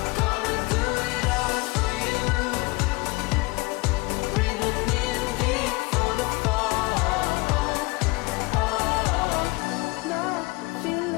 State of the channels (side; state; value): right; quieter; 24.6 dB